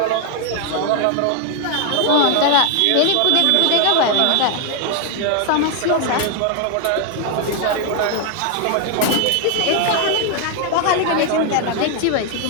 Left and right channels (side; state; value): both; different; correlation 0.01